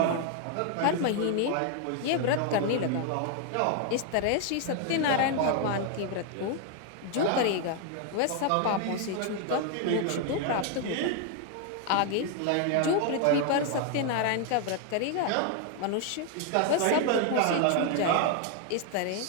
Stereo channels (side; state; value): both; different; correlation 0.00